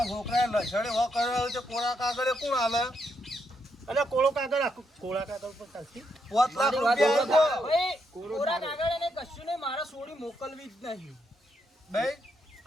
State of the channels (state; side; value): normal; both; correlation 0.78